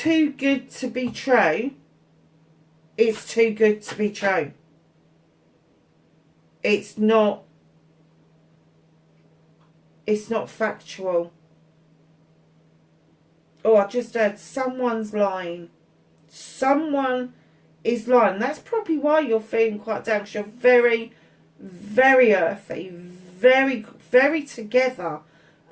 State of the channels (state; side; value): identical; both; correlation 1.00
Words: good to be true, it's too good to be true. It's not factual. Oh, I just heard someone's lying. Someone is lying. That's probably why you're feeling quite down, because you're very, very earthy, very, very together